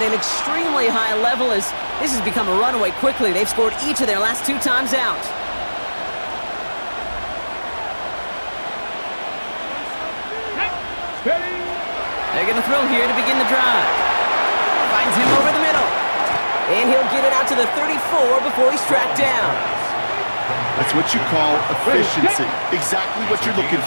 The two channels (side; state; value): both; inverted; correlation -1.00